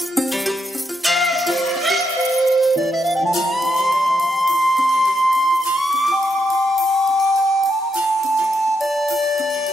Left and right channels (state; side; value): normal; both; correlation 0.81